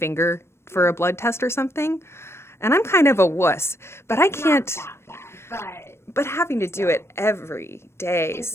for a blood test or something. And I'm kind of a wuss, but I can't. Not that bad, but having to do it every day,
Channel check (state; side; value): late; right; 0.12 ms